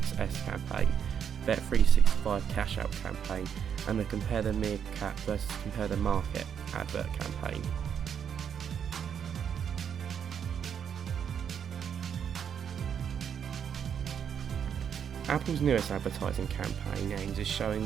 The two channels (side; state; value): left; quieter; 8.0 dB